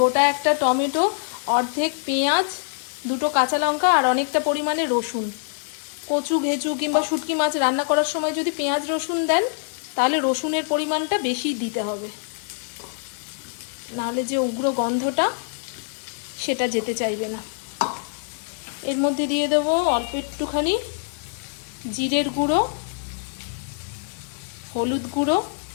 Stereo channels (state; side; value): silent; right; digital silence